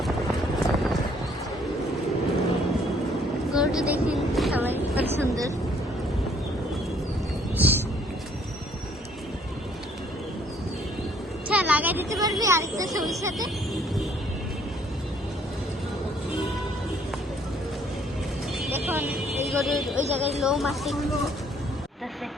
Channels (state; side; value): normal; both; correlation 0.63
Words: গরুটা দেখেন সবাই কত সুন্দর। আচ্ছা লাগাই দিতে পারবি আরেকটা ছবির সাথে? দেখুন এই গরুর ওই জায়গায় লোম আছে।